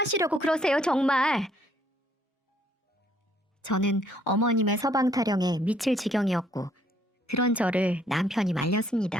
그러세요, 정말? 저는 어머님의 서방 타령에 미칠 지경이었고 그런 저를 남편이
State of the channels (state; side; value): normal; both; correlation 0.66